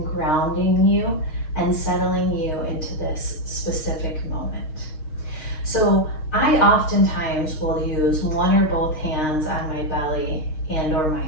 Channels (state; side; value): late; right; 6.4 ms